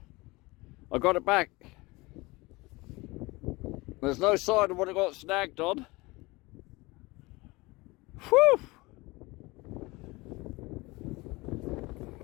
I got it back. There's no sign of what it got snagged on. Whew!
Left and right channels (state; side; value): quieter; right; 22.9 dB